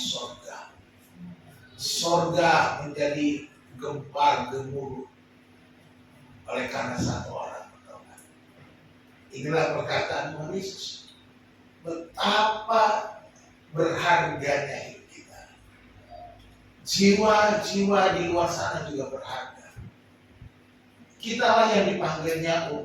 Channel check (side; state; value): both; identical; correlation 1.00